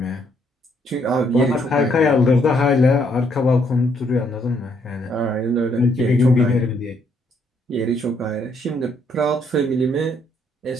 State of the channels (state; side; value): normal; both; correlation 0.71